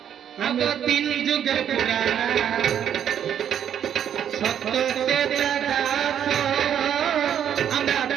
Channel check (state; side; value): quieter; left; 9.4 dB